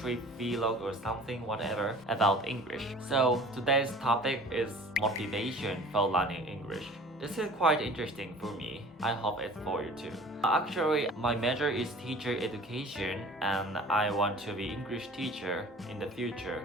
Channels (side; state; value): both; normal; correlation 0.46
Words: vlog or something, whatever, about English. So today's topic is motivation for learning English. This is quite interesting for me. I hope it's for you too. Actually, my major is teacher education and I want to be English teacher in the future.